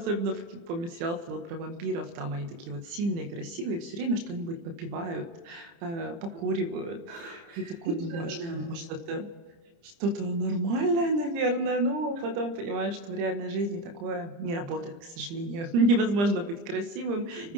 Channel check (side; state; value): left; late; 30 ms